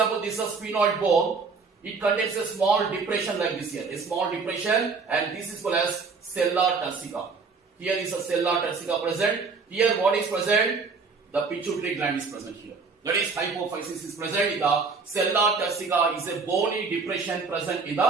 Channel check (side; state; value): left; quieter; 4.7 dB